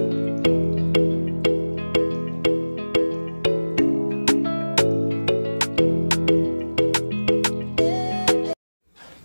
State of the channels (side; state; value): both; inverted; correlation -1.00